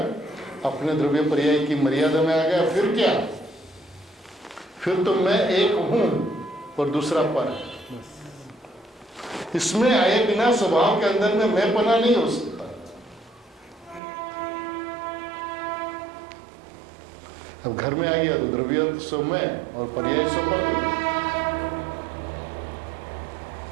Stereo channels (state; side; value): drops out; left; at 14.0 s